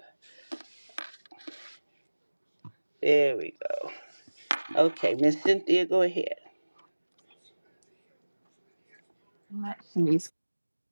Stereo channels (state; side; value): inverted; both; correlation -1.00